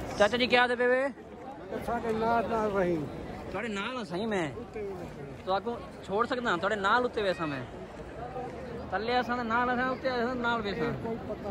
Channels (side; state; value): both; identical; correlation 1.00